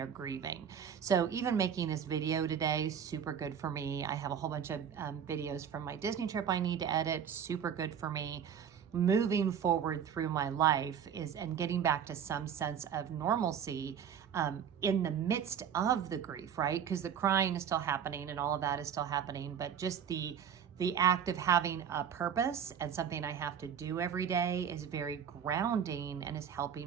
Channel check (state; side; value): quieter; left; 8.2 dB